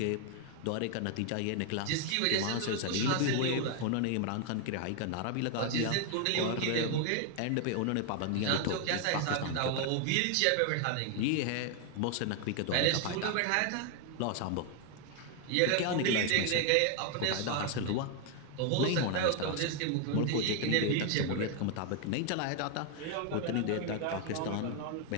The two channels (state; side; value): different; both; correlation 0.01